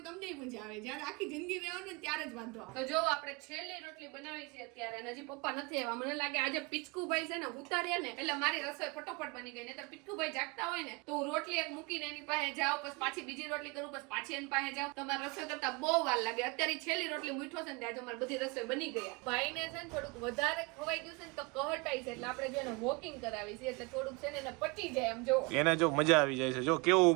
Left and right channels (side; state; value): left; quieter; 28.0 dB